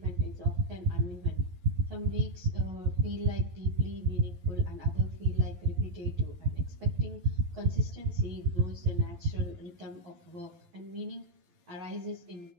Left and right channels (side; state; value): left; late; 12 ms